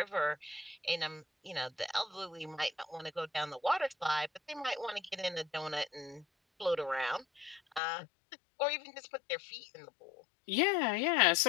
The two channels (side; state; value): right; drops out; at 7.8 s